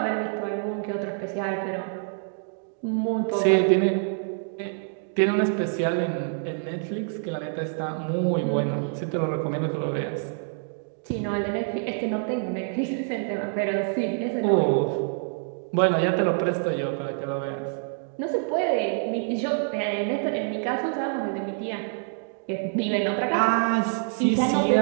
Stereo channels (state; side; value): silent; left; 61 dB below the other